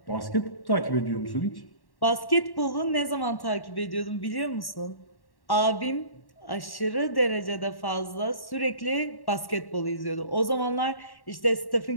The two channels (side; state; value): right; late; 1.1 ms